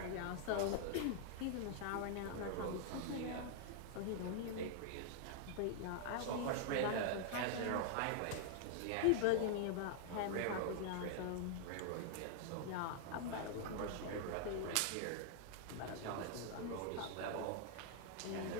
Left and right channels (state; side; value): different; both; correlation 0.00